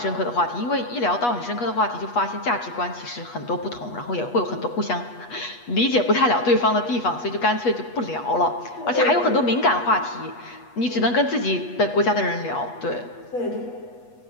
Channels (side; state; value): right; late; 8.3 ms